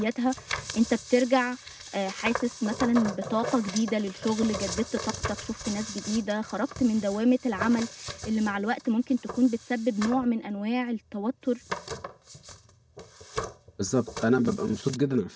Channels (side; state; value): both; identical; correlation 1.00